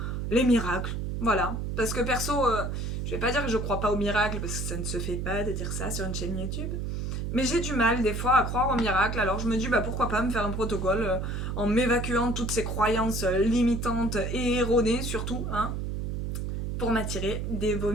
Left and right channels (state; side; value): noise; right; hum, 2 dB below the sound